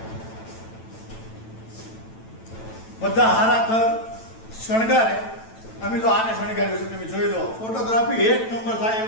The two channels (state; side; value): late; right; 9.0 ms